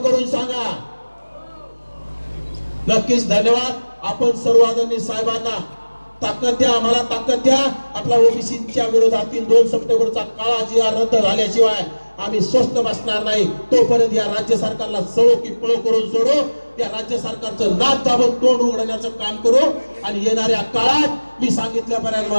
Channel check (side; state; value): both; inverted; correlation -1.00